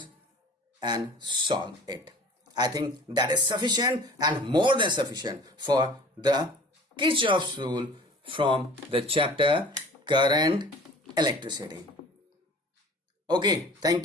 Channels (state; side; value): normal; both; correlation 0.45